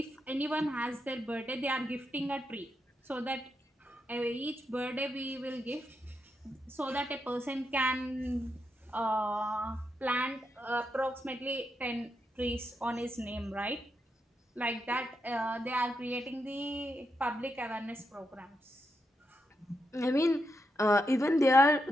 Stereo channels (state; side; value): normal; both; correlation 0.84